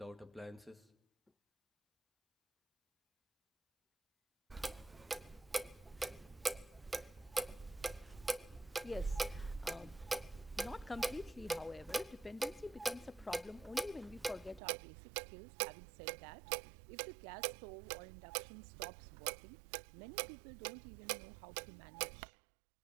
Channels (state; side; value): drops out; left; at 14.6 s